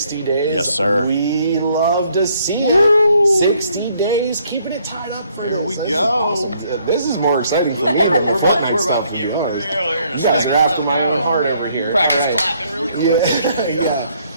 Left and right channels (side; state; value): both; inverted; correlation -0.68